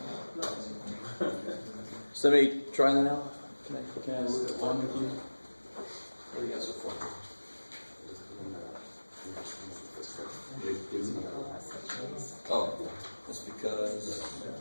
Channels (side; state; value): both; inverted; correlation -1.00